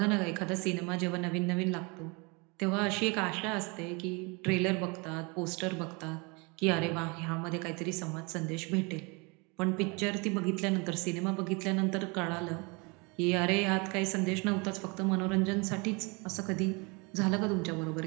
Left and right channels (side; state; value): left; quieter; 29.4 dB